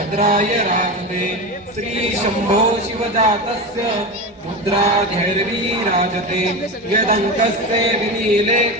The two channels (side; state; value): both; normal; correlation 0.22